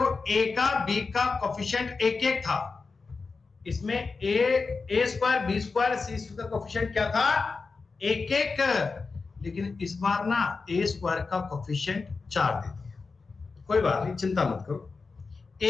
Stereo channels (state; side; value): quieter; right; 4.4 dB